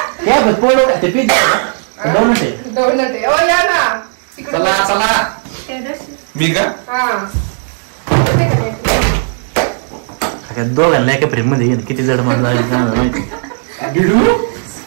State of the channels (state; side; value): silent; left; 71 dB below the other